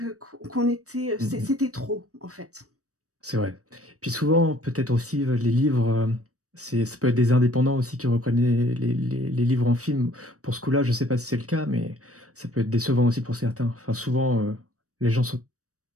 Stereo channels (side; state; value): left; late; 0.66 ms